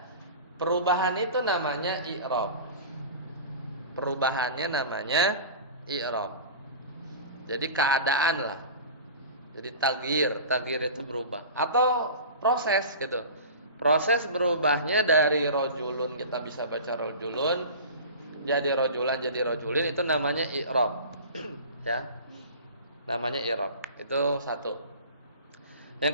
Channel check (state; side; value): inverted; both; correlation -0.36